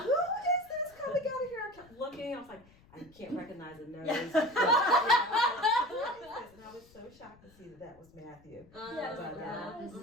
is this coming out of here? I kept looking. I was like, I can't recognize the nose. And I was so shocked to see that was Matthew. But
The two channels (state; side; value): noise; left; rumble, 27 dB below the sound